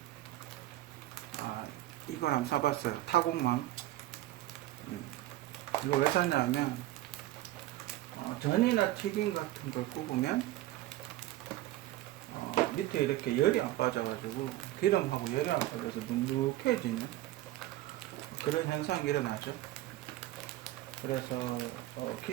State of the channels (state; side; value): quieter; left; 15.6 dB